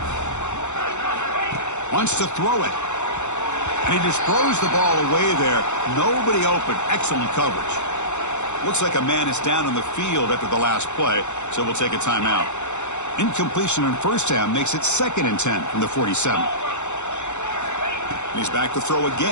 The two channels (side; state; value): right; late; 0.83 ms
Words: Wants to throw it. And he just throws the ball away there. Nobody open. Excellent coverage. Looks like a man is down on the field after the last play, so we'll take a timeout. Incompletion on first down makes it 2nd and 10 from the 47. And he's back to throw